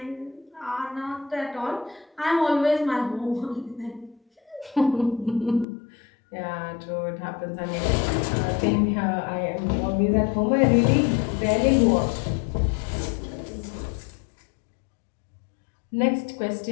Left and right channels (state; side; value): drops out; right; at 5.7 s